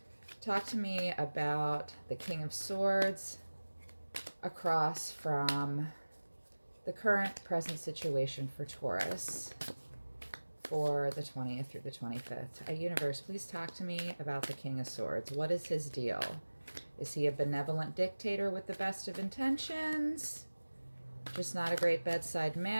Talk to me about the King of Swords across from the current present situation for Taurus for the 20th through the 25th. Universe, please talk to me about the King of Swords. What is his deal? Is he a benevolent dictator with the best of intentions? Just not a great bedside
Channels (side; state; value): both; inverted; correlation -1.00